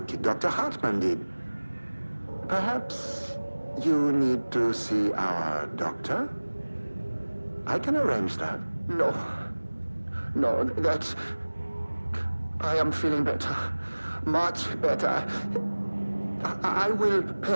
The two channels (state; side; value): inverted; both; correlation -1.00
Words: Dr. Hartman did. Perhaps you need to see our doctor? I can arrange that. No. No, that's... I am feeling better. Much better. I will